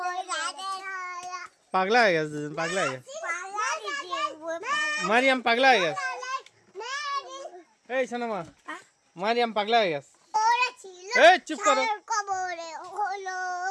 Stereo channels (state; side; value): identical; both; correlation 1.00